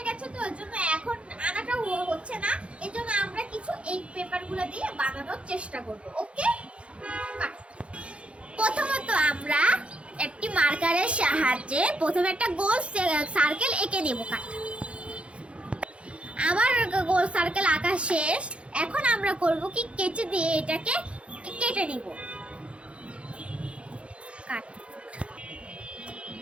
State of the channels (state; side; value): late; left; 0.060 ms